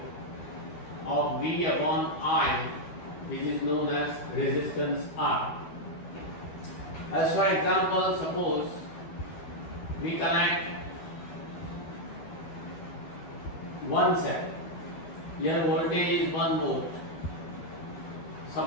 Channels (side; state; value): right; late; 13 ms